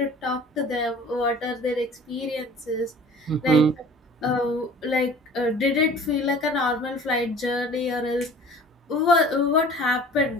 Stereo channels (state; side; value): normal; both; correlation 0.46